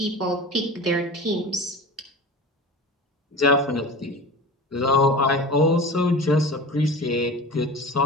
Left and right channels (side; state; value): both; normal; correlation 0.34